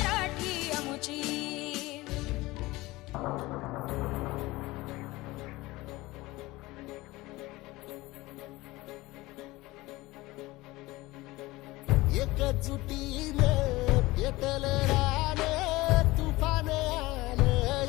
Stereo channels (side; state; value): right; quieter; 20.0 dB